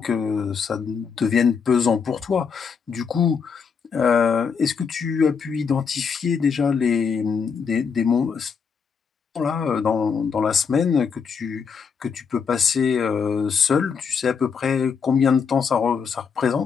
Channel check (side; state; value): right; quieter; 6.1 dB